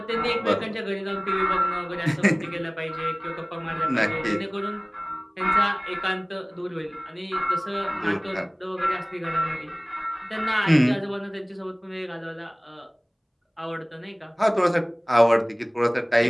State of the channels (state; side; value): identical; both; correlation 1.00